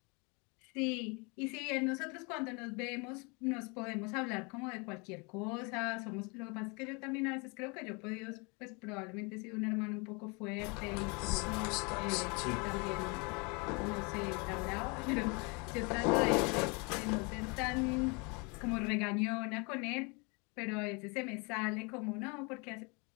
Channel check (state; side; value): quieter; right; 30.8 dB